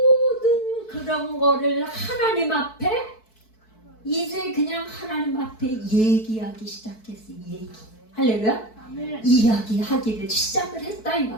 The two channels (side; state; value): right; late; 4.6 ms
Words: 그런 거를 하나님 앞에 이제 그냥 하나님 앞에 얘기하기 시작했어요. 할렐루야? 이야기하기를 시작을 했다 이